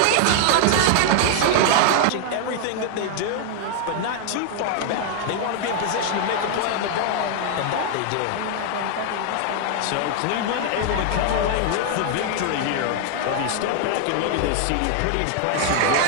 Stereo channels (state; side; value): different; both; correlation 0.00